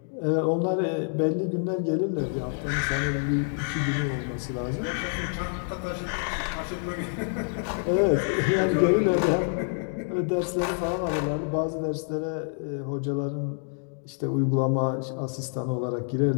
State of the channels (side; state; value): right; silent; 56 dB below the other